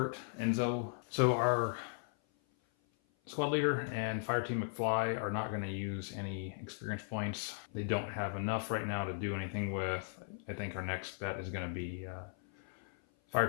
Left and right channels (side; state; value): right; silent; 53 dB below the other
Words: Enzo. So our squad leader and fire team McFly are not going to use any experience points. They don't have enough right now to do anything with. I think our next bet is going to be fire